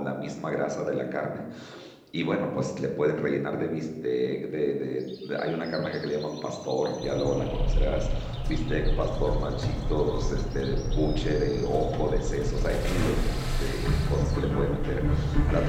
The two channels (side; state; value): both; identical; correlation 1.00